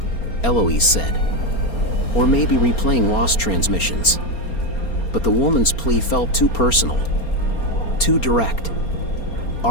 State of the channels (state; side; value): late; right; 4.3 ms